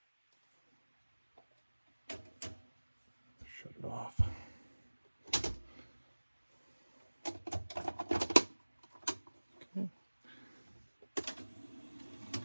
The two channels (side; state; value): both; inverted; correlation -1.00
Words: Shut it off. Okay.